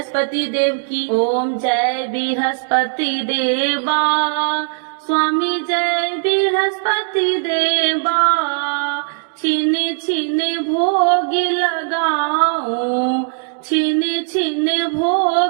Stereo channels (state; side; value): silent; left; 67 dB below the other